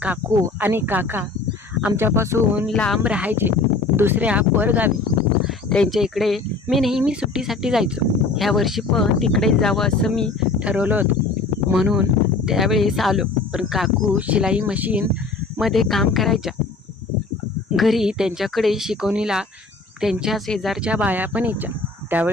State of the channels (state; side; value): quieter; right; 3.8 dB